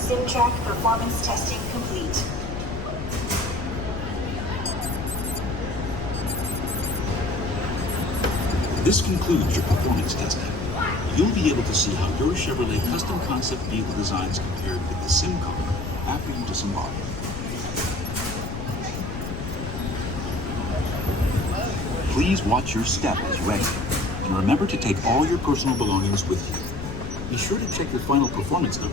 performance testing complete. This concludes your performance testing. You'll be able to see how your Chevrolet custom concept vehicle designs compared with the sim car after you disembark. Please watch your step as you exit, and remember to take all your personal belongings with you. Be sure to check your final performance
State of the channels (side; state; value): left; noise; rumble, 7 dB below the sound